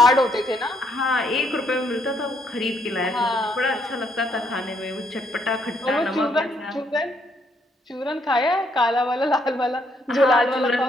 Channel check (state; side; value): normal; both; correlation 0.72